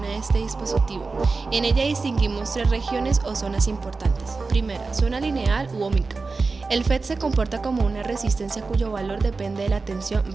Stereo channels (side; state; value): left; quieter; 4.1 dB